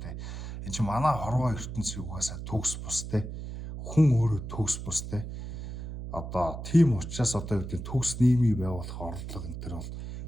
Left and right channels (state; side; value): noise; right; hum, 8 dB below the sound